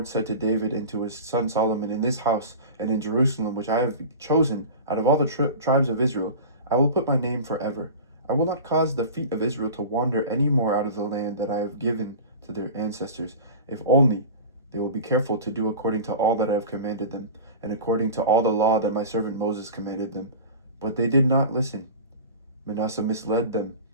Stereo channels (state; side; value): inverted; both; correlation -0.34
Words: said to David and to his son Solomon, "In this house and in Jerusalem, which I have chosen out of all the tribes of Israel, I will put my name forever. I will not cause the feet of Israel to wander any more out of the land that I have given to their ancestors, if only they will be careful to do according to all that I have commanded them, and according to all the law that my servant Moses commanded them." But they did not listen. Manasseh misled them